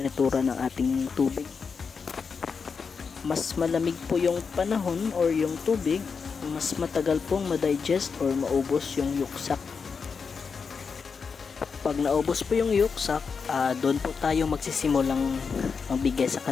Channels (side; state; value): right; quieter; 5.5 dB